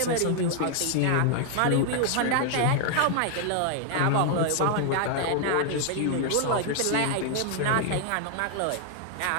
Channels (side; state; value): both; different; correlation 0.00